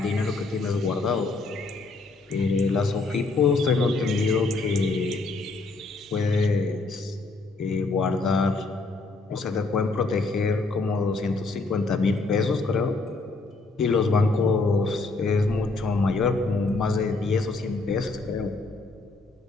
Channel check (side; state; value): right; quieter; 3.5 dB